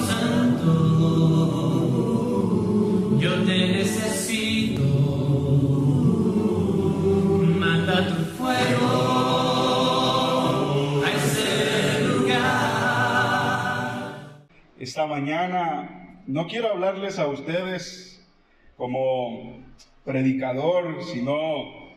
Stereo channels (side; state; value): both; identical; correlation 1.00